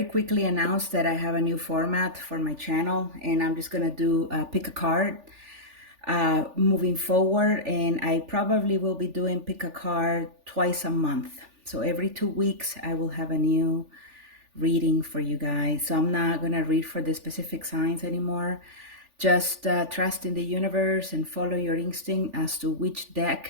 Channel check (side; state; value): left; late; 3.4 ms